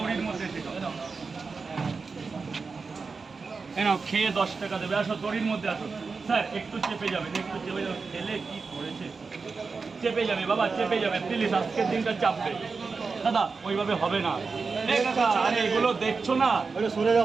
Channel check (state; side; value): quieter; left; 4.6 dB